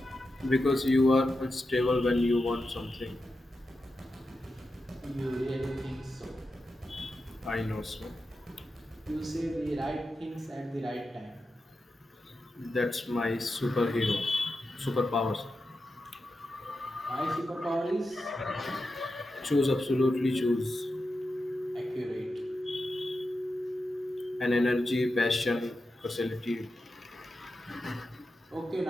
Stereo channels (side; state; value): both; normal; correlation 0.90